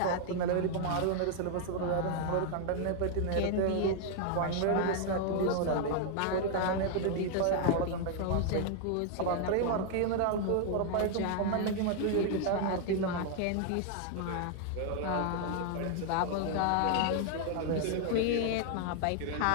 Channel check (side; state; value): both; different; correlation 0.00